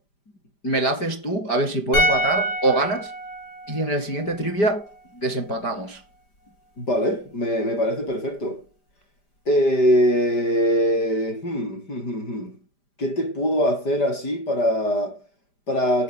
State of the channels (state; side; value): late; right; 5.0 ms